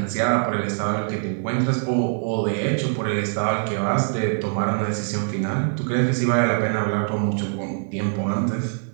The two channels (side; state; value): left; silent; 60 dB below the other